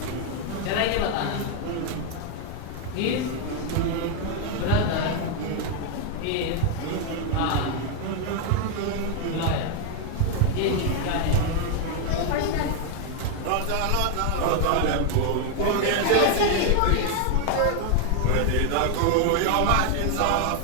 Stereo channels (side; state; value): both; different; correlation 0.01